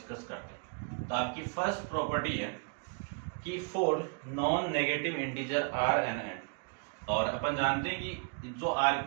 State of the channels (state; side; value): quieter; left; 37.6 dB